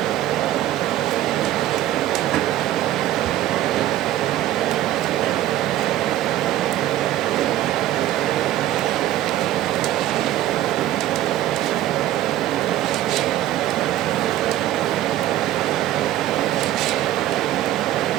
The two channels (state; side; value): quieter; left; 13.6 dB